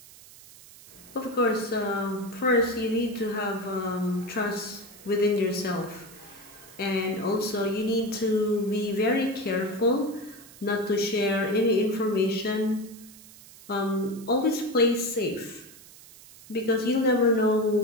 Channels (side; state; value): right; noise; hiss, 20 dB below the sound